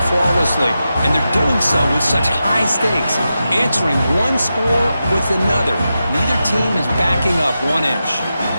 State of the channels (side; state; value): both; inverted; correlation -0.90